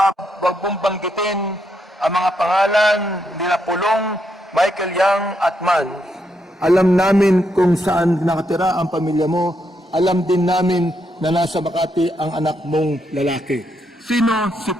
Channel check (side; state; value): both; normal; correlation 0.79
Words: mong banggitin ang mga pangalan nila Pulong, Michael Yang at Man. Alam namin kung saan nakatira ang pamilya mo. Alam din namin na nasa Makati ang anak mong lalaki. Sino si